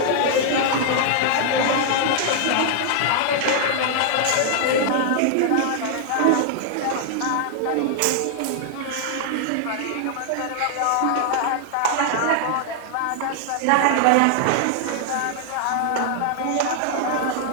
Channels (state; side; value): different; both; correlation -0.01